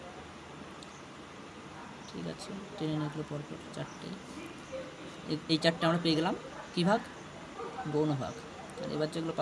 ঠিক আছে, টেনে নিয়ে পরপর 4টে, এই 4টে আমরা পেয়ে গেলাম কী ভাগ? গৌণ ভাগ। আর এবার যেগুলো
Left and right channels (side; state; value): both; identical; correlation 1.00